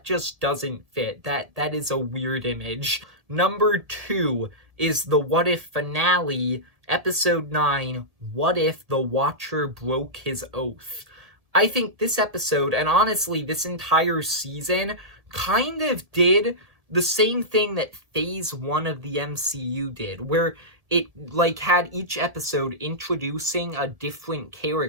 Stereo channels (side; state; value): left; late; 1.7 ms